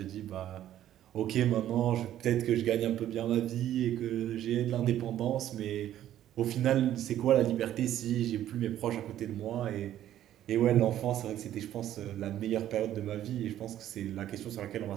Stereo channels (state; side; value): quieter; left; 12.0 dB